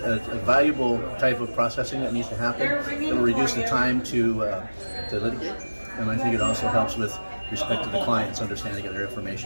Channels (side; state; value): both; inverted; correlation -1.00